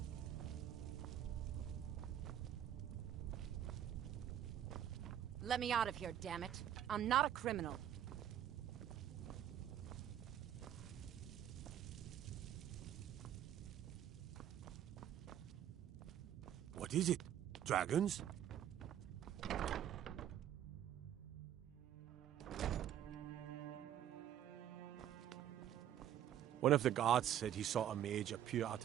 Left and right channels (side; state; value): left; quieter; 10.7 dB